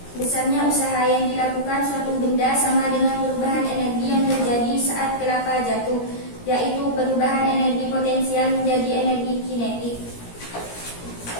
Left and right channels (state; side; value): late; right; 17 ms